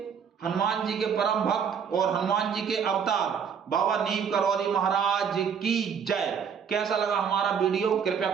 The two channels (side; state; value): left; quieter; 7.1 dB